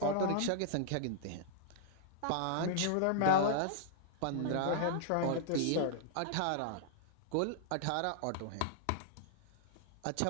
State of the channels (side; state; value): both; different; correlation -0.01